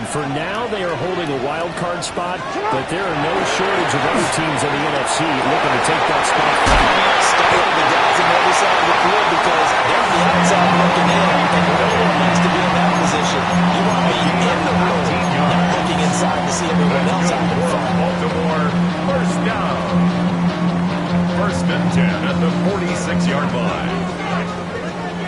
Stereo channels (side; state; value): both; identical; correlation 1.00